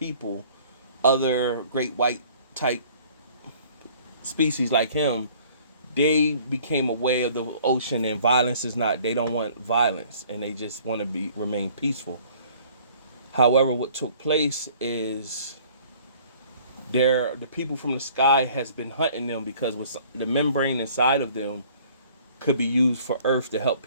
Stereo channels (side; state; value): both; inverted; correlation -0.54